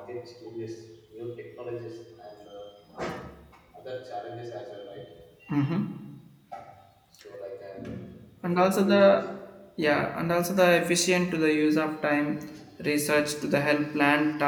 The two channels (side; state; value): both; identical; correlation 1.00